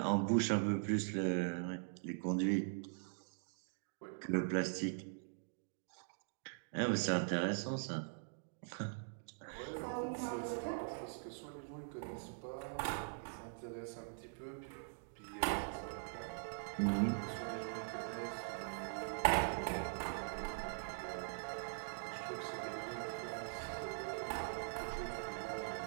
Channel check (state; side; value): silent; left; digital silence